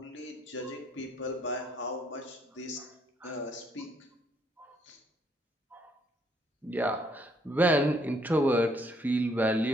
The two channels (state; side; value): normal; both; correlation 0.68